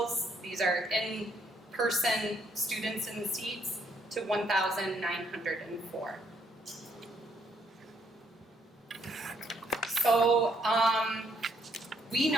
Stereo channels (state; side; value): normal; both; correlation 0.71